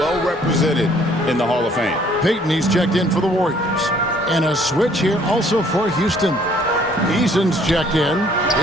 represented in the Hall of Fame. Payton, he's checked in for the Warriors. And a switch here also for Houston. Eason's checked in.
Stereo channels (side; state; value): both; normal; correlation 0.60